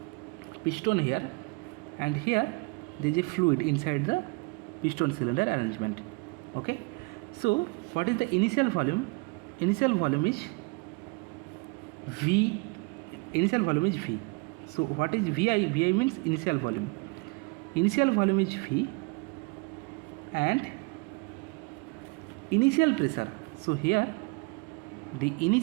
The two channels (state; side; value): quieter; left; 29.0 dB